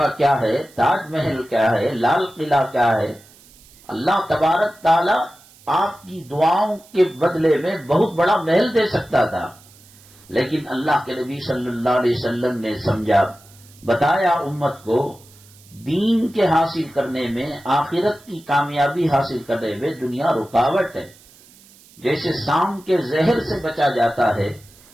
کیا ہے، تاج محل کیا ہے، لال قلعہ کیا ہے، اللہ تبارک تعالی آپ کی دعاؤں کے بدلے میں بہت بڑا محل دے سکتا تھا، لیکن اللہ کے نبی صلی اللہ علیہ وسلم نے سمجھا، بتایا امت کو، دین کے حاصل کرنے میں، آخرت کی کامیابی حاصل کرنے میں دنیا رکاوٹ ہے۔ جیسے سام کے زہر سے بچا جاتا ہے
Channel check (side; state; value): right; noise; hiss, 26 dB below the sound